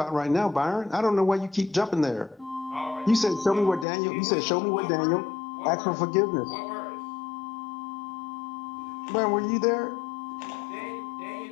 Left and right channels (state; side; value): drops out; right; at 3.9 s